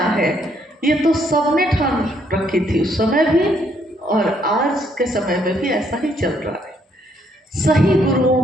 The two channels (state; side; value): normal; both; correlation 0.70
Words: ये तो सबने ठान रखी थी उस समय भी, और आज के समय में भी ऐसा ही चल रहा है। सही